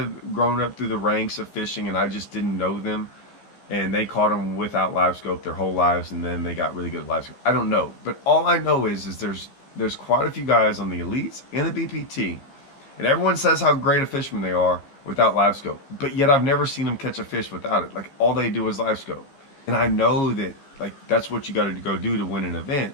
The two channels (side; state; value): right; late; 15 ms